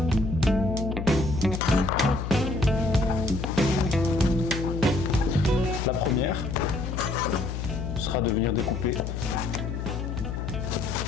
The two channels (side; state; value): left; noise; hum, 4 dB below the sound